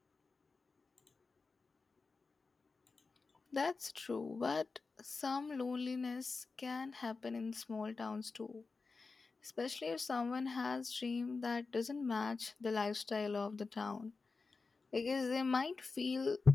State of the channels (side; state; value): right; quieter; 4.2 dB